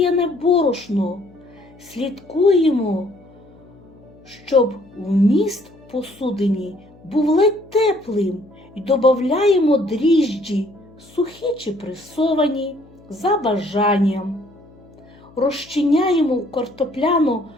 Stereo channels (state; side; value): noise; left; hum, 25 dB below the sound